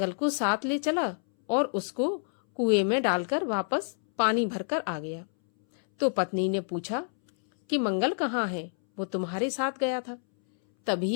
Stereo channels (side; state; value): right; silent; 59 dB below the other